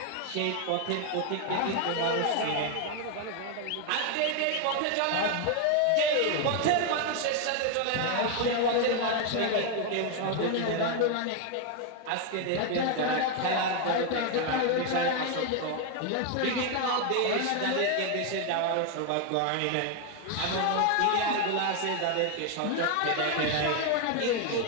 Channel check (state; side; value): different; both; correlation 0.01